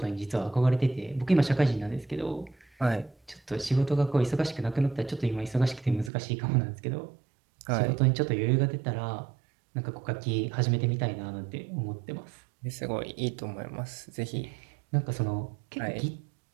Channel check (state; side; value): drops out; left; at 6.1 s